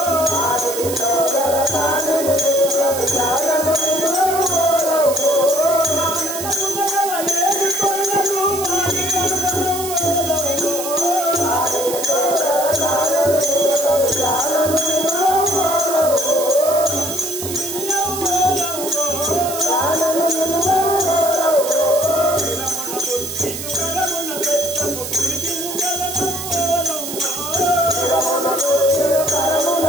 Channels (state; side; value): noise; right; hiss, 7 dB below the sound